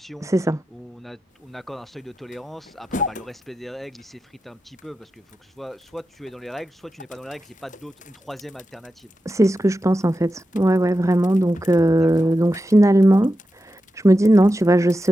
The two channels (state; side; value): normal; both; correlation 0.90